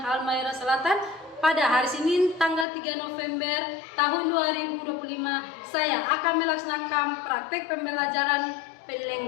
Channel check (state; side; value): drops out; right; at 2.7 s